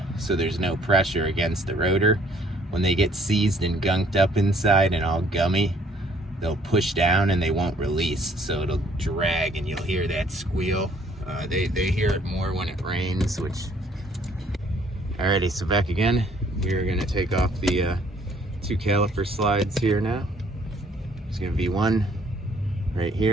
so there's no pressure against the rotor. When they get seized and gunked up inside and all gummy, they'll push down and they won't release, so it'll drag and you'll hear that squeal. They hear it more when it rains, which... Alrighty, so back again. We're gonna take off the two caliper slides here now. There's gonna be one right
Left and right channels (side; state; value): both; normal; correlation 0.61